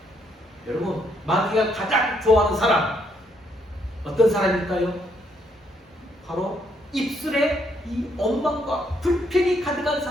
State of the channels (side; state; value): both; normal; correlation 0.71